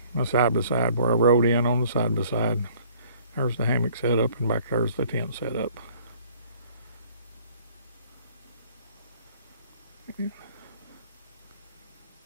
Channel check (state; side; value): inverted; both; correlation -0.56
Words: my side-by-side where I rode in on the side-by-side. There's the hammock set up, and back there's the tent set up.